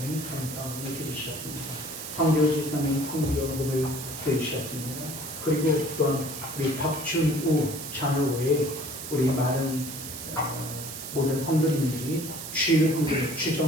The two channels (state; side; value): noise; right; hiss, 9 dB below the sound